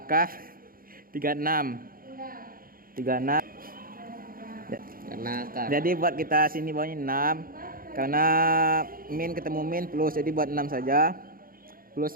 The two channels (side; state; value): left; late; 0.42 ms